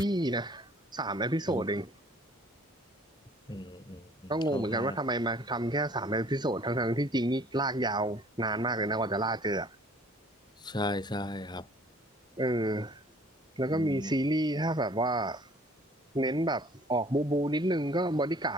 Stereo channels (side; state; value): both; normal; correlation 0.54